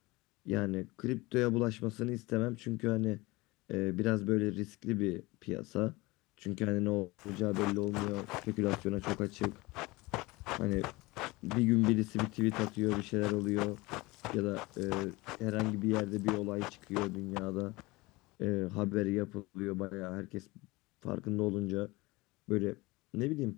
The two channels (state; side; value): quieter; right; 22.5 dB